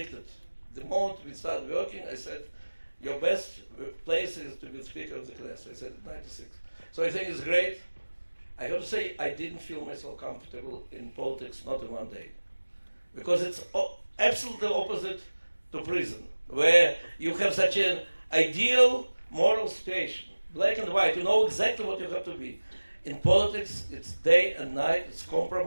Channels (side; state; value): both; inverted; correlation -1.00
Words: The moment we started working, I said, your best place is to be speaker of the Knesset. I said it in '96. So I think it's great. I have to say, I didn't feel myself comfortable in politics, not in one day. Because it's absolutely opposite to prison, where you have such an ideal moral situation, black and white, you know exactly what you have to be. In politics, it's day and night, it's